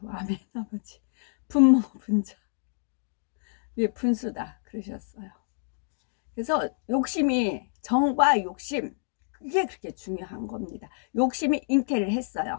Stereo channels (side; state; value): right; silent; digital silence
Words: 아멘 아버지. 분모 분자 분수다 그러셨어요. 그래서 욕심이 정과 욕심 그게 그렇게 중요한 겁니다. 욕심이 잉태를